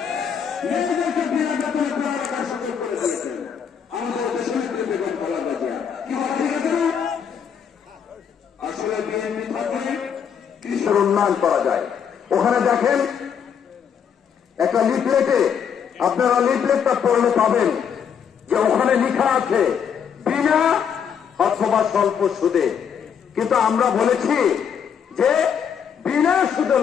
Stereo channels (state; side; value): quieter; right; 7.6 dB